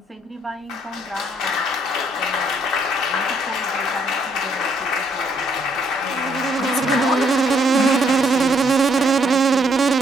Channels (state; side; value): normal; both; correlation 0.69